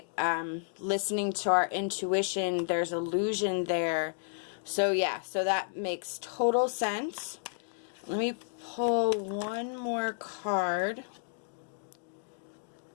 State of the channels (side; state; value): right; silent; digital silence